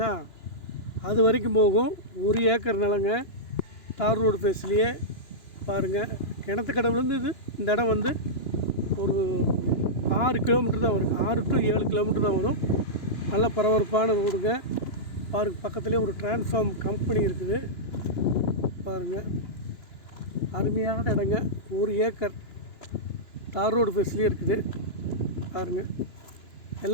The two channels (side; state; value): right; late; 2.9 ms